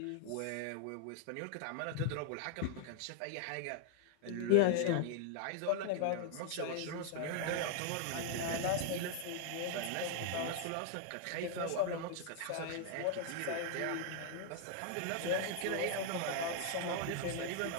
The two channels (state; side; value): different; both; correlation 0.00